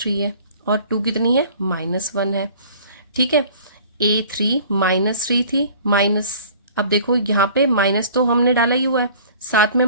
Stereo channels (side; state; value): both; inverted; correlation -0.49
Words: है और 2 कितनी है -1 है। ठीक है, A3 -3 थी माइनस, अब देखो यहाँ पे माइनस तो हमने डाला ही हुआ है, साथ में